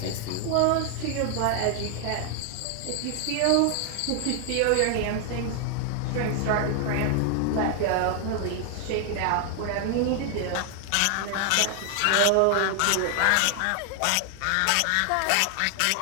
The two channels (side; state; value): both; different; correlation 0.00